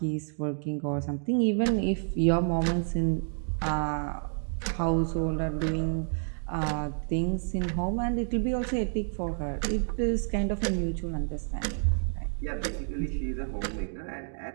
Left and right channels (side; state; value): left; silent; 58 dB below the other